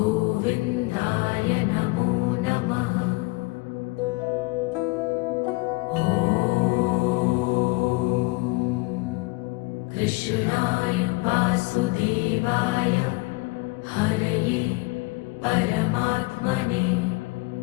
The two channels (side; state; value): right; quieter; 24.9 dB